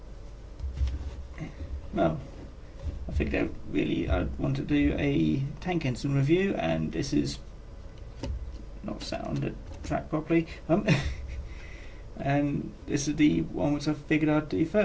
well, I think that really I want to do a tank engine review, and this is not sat on the track properly, and this is the one which I figured I'd do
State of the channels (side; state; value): both; identical; correlation 1.00